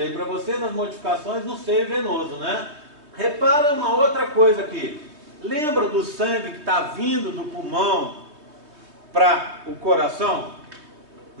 para vocês as modificações no seio venoso, né? Repara uma outra coisa aqui. Lembra do sangue que está vindo do pulmão para o coração?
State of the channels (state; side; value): late; left; 3.2 ms